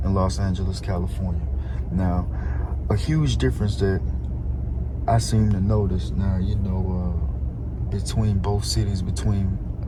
in Los Angeles, California. Now, a huge difference that I seem to notice now, between both cities, between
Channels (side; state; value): both; identical; correlation 1.00